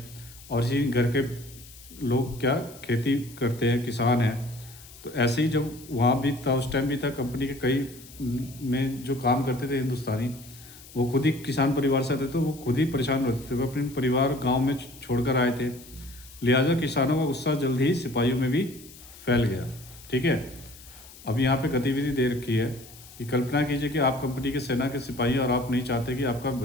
और इसी घर के लोग क्या खेती करते हैं, किसान हैं। तो ऐसे ही जब वहाँ भी था, उस टाइम भी था, कंपनी के कई में जो काम करते थे हिंदुस्तानी, वो खुद ही किसान परिवार से आते थे, तो वो खुद ही परेशान रहते थे। वो अपने परिवार गाँव में छोड़कर आए थे, लिहाजा किसानों का गुस्सा जल्द ही सिपाहियों में भी फैल गया। ठीक है, अब यहाँ पे गतिविधि दे रखी है कि कल्पना कीजिए कि आप कंपनी के सेना के सिपाही और आप नहीं चाहते कि आपका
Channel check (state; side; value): noise; left; hiss, 20 dB below the sound